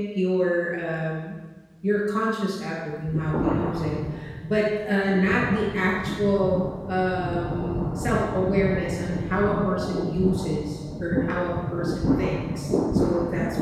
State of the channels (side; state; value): both; identical; correlation 1.00